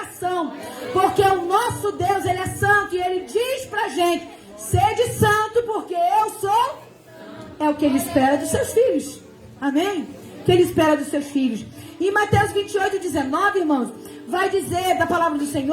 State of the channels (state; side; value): identical; both; correlation 1.00